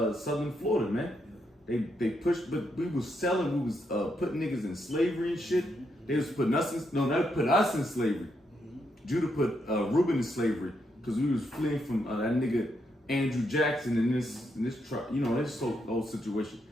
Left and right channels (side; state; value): both; normal; correlation 0.79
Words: Florida, man. They pushed, but we was selling. We was putting niggas in slavery and shit. They was putting us in. No, they put us in slavery. Judah put Reuben in slavery because we was fleeing from that nigga Andrew Jackson in this this whole situation.